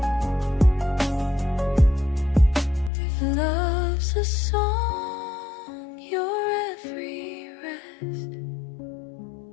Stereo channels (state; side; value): drops out; right; at 2.9 s